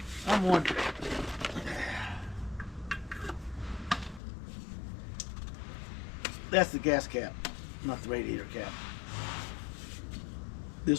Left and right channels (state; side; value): drops out; right; at 4.2 s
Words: I'm wondering. That's the gas cap, not the radiator cap.